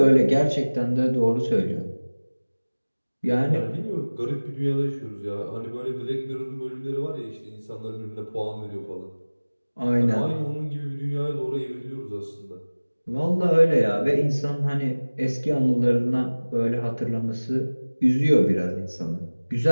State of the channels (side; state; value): both; inverted; correlation -1.00